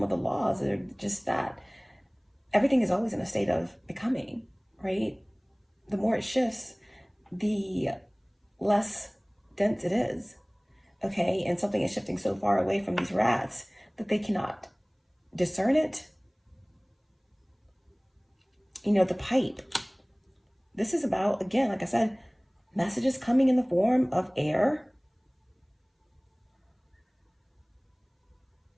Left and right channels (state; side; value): identical; both; correlation 1.00